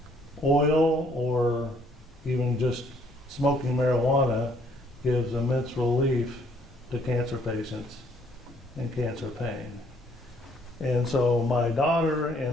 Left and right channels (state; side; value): normal; both; correlation 0.64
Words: oil or even just smoking marijuana gives immense relief to cancer patients and cancer pain. And so my daughter